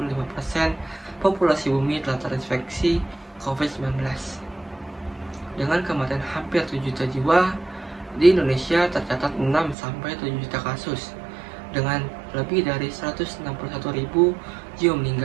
populasi bumi telah terinfeksi COVID-19. Dengan kematian hampir 7 juta jiwa Di Indonesia tercatat 6-7 juta kasus dengan lebih dari 161.000 jiwa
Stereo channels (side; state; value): left; drops out; at 9.8 s